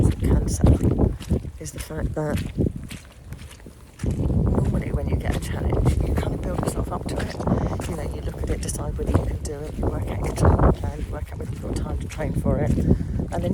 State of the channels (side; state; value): both; identical; correlation 1.00